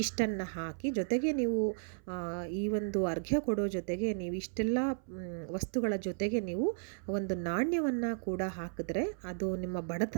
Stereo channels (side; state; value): left; silent; 55 dB below the other